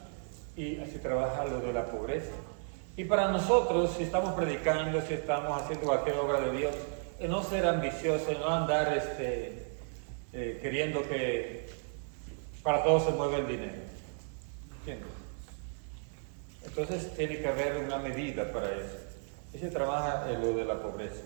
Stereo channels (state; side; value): silent; left; 55 dB below the other